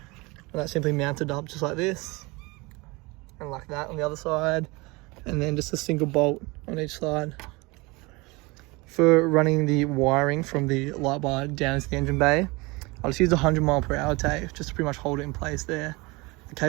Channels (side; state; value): left; quieter; 24.9 dB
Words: that simply mounted up just like this and like that on the other side, and then just a single bolt on each side. For running the wiring from the light bar down into the engine bay, I'll just use a 100 mph tape just to pretty much hold it in place there. The